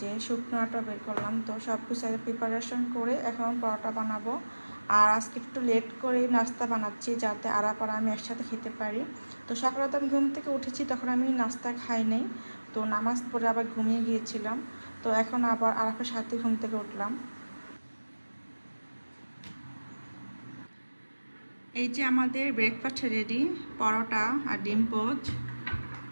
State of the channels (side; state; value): both; inverted; correlation -1.00